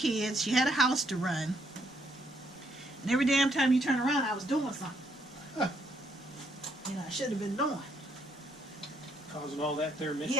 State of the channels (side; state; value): both; normal; correlation 0.72